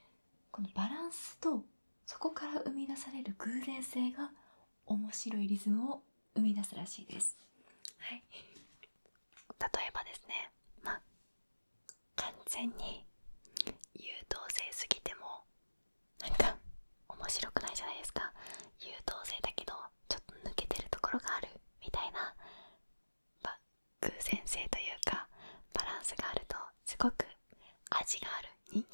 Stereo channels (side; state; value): both; inverted; correlation -1.00